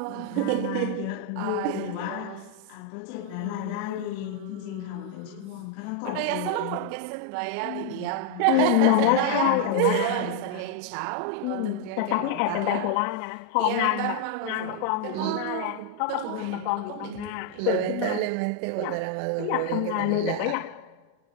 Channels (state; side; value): different; both; correlation 0.00